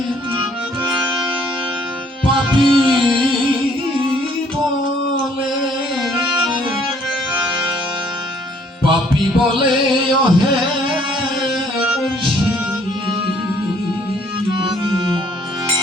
পাপী বলে পাপী বলে ওহে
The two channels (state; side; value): normal; both; correlation 0.62